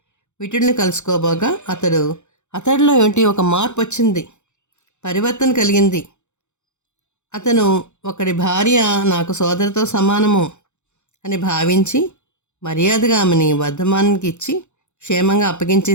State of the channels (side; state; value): right; late; 0.83 ms